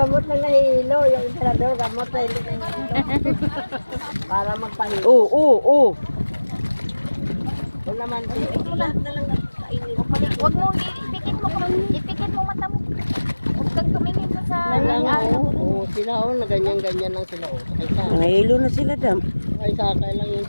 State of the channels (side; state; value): both; inverted; correlation -1.00